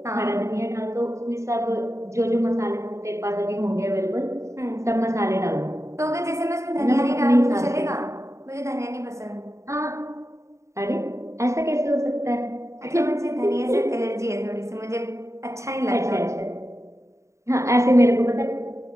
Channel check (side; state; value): left; late; 0.14 ms